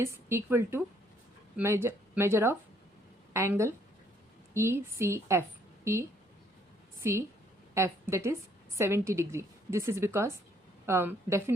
equal to measure of angle ECF, that is 70 degree. This is because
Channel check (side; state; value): both; normal; correlation 0.66